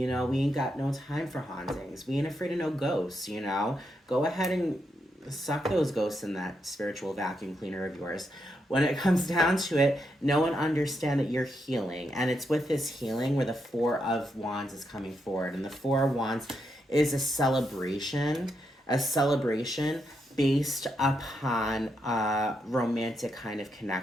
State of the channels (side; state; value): both; normal; correlation 0.82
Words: know, we ain't got no time for hauntings. We ain't afraid of no ghosts, you know? Go ahead and suck those ghosts in that spiritual vacuum cleaner of yours. When it comes down to it, know and understand that you're healing. And it's with this healing where the Four of Wands is coming forward. And the Four of Wands is a celebration based upon a romantic kind of